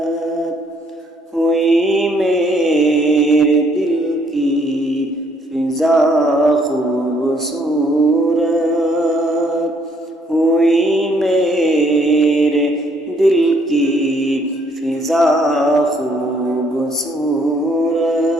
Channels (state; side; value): normal; both; correlation 0.67